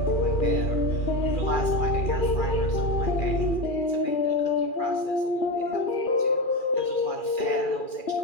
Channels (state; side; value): late; right; 2.4 ms